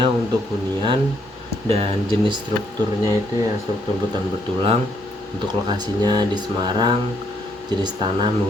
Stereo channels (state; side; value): normal; both; correlation 0.71